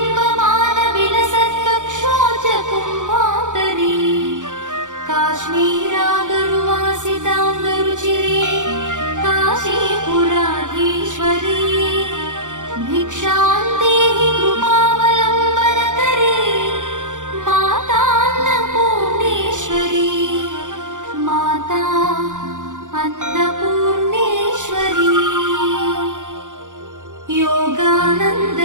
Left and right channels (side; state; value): left; late; 0.86 ms